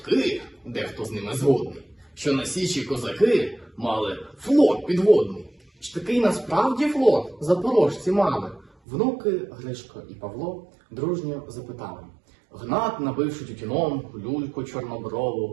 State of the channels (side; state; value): left; drops out; at 8.7 s